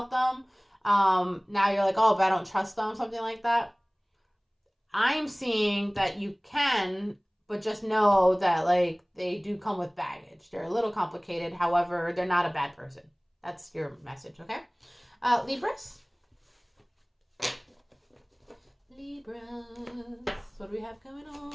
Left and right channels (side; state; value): both; identical; correlation 1.00